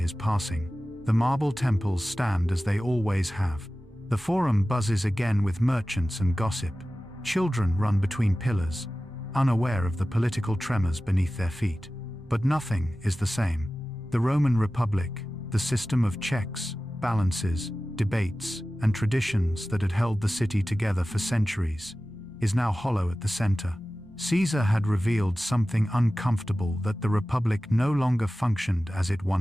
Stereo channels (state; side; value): normal; both; correlation 0.96